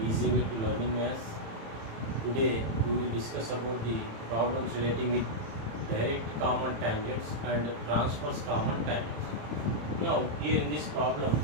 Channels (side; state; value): left; late; 27 ms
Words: Easy Way to Learning Maths. Today we will discuss about the problems relating with direct common tangents and transverse common tangents. Now here in this problem,